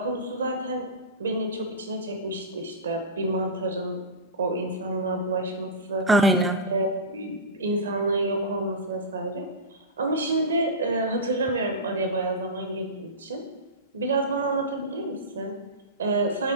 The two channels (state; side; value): normal; both; correlation -0.18